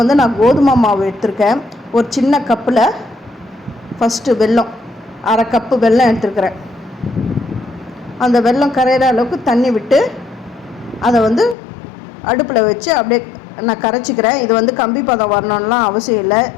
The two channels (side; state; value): right; drops out; at 11.6 s